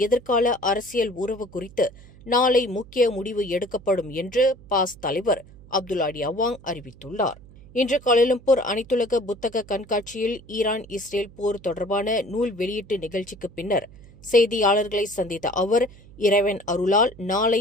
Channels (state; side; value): noise; right; hum, 22 dB below the sound